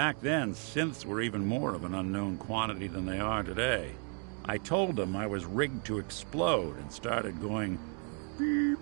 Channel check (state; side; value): quieter; left; 39.8 dB